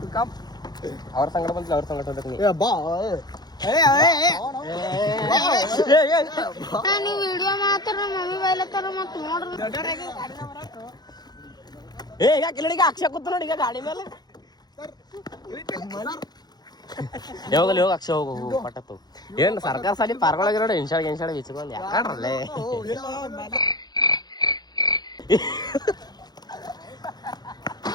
ಅವ್ರ ಸಂಗಡ ಬಂದಿಲ್ಲ, ಅವ್ರ ಸಂಗಡ ಹೋಗ್ಬೇಕು. ಈಗ ಅಕ್ಷಯ ಕೂತ ನೋಡಿ ಈಗ ಗಾಡಿ ಮೇಲೆ. ಯಾವಾಗಲ್ಲಿ ಹೋಗಿ ಅಕ್ಷಯ ಹೋಗು ಪಟ್ಟತ್ತು. ಏನ್ ಸರ್ಕಾರ ಸಾಲಿ ಪಾರ್ಗೊಳಗೆ ನೋಡಿ ಇನ್ಶಾಡ್ ವಿಚ್ಕೊಂಡ್ ಯಾಕಡ್ರಲ್ಲೇ.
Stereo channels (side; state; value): right; late; 0.20 ms